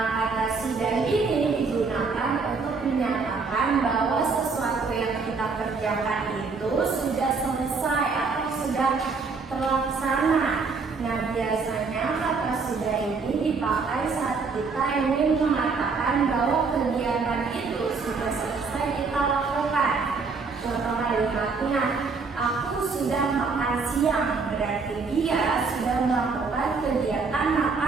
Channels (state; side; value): quieter; left; 4.6 dB